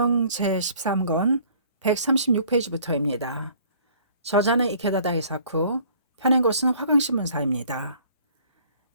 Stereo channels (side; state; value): both; inverted; correlation -0.55